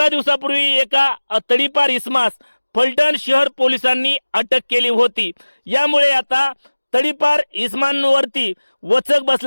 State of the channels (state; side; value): inverted; both; correlation -1.00